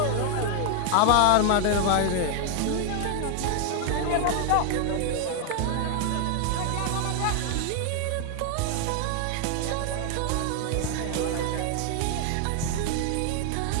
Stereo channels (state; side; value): different; both; correlation 0.00